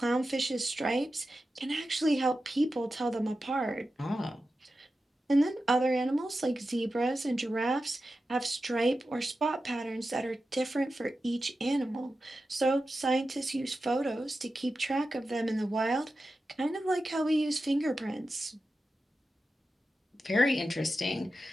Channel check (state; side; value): normal; both; correlation 0.92